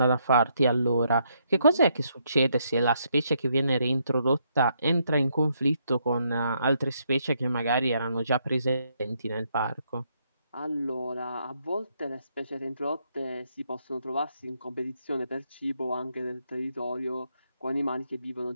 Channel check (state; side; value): inverted; both; correlation -0.75